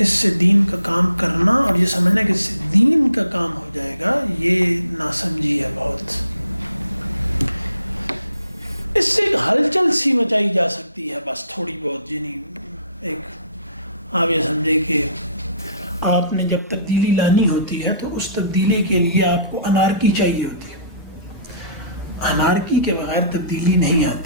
سے دین کا کام کرنا اور یہ سمجھنا کہ اس سے دین کا کام ہو جائے گا، یہ ناسمجھی ہے بہت. اس سے ایک ہلچل سی مچائی جا سکتی ہے بس تھوڑی بہت. یعنی ایک آپ یہ سمجھے کہ آپ نے جب تبدیلی لانی ہوتی ہے تو اس تبدیلی کے لیے آپ کو انارکی چاہیے ہوتی ہے. انارکی کے بغیر تبدیلی نہیں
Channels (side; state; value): both; inverted; correlation -0.56